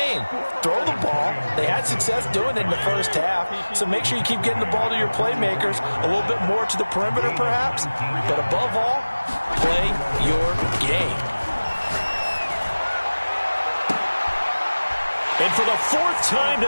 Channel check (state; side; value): inverted; both; correlation -1.00